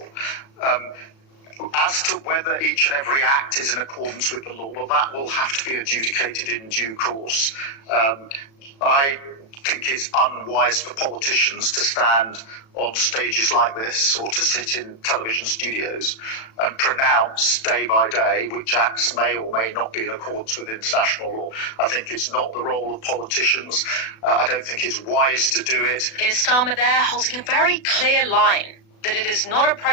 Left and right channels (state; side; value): late; right; 36 ms